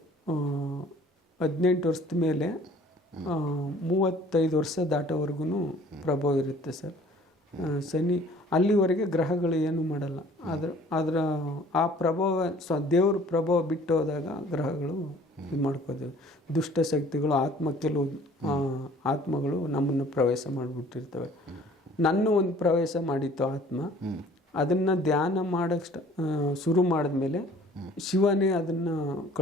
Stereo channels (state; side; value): normal; both; correlation 0.53